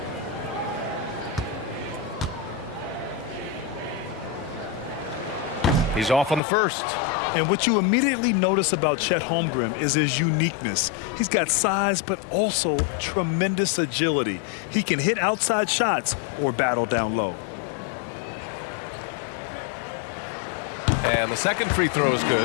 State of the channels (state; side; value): drops out; right; at 6.4 s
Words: He's off on the first. And what you immediately notice about Chet Holmgren is his uniqueness. He's got size, but also tremendous agility. He can hit outside shots or battle down low. And the second free throw is